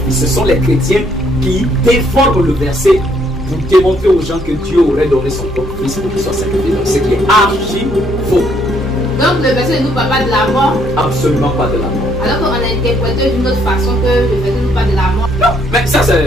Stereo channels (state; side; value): normal; both; correlation 0.68